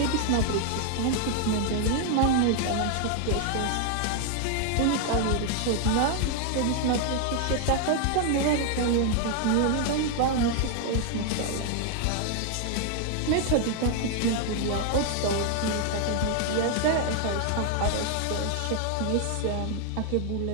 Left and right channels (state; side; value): different; both; correlation 0.00